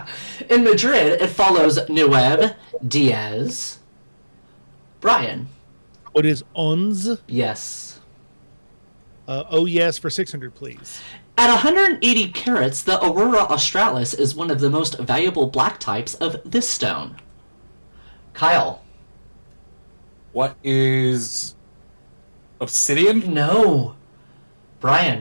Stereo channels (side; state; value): both; inverted; correlation -1.00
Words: In Madrid, it follows Nueve, Diaz. Brian. What is ons? Yes. Oh yes for 600, please. At 180 carats, the Aurora Australis is one of the most valuable black types of this stone. Kyle. What is obsidian? No.